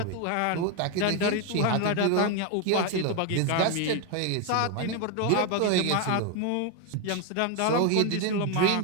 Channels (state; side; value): different; both; correlation 0.01